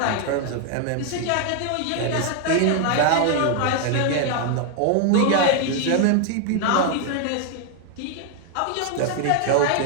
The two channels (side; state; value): both; different; correlation 0.00